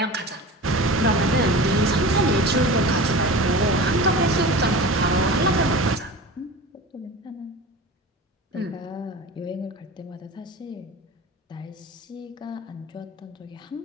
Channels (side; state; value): both; normal; correlation 0.34